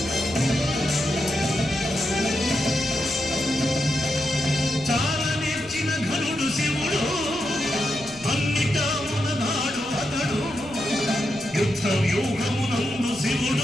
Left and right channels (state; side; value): noise; left; rumble, 21 dB below the sound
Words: చాలా నేర్చిన ఘనుడు శివుడు అన్నిటా ఉన్ననాడు అతడు యుద్ధ వ్యూహమునందు